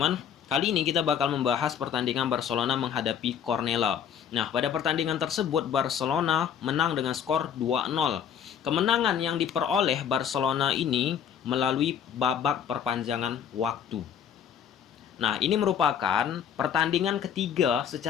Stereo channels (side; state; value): right; quieter; 8.4 dB